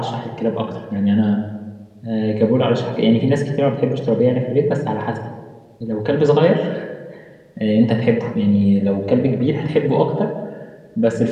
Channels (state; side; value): identical; both; correlation 1.00